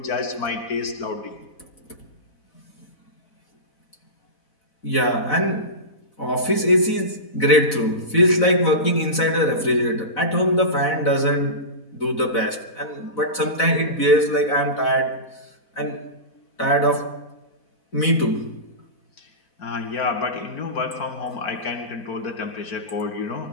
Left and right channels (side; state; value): right; late; 4.0 ms